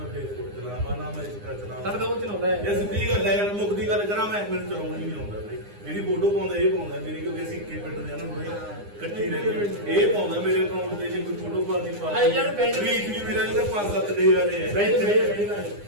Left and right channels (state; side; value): late; left; 9.8 ms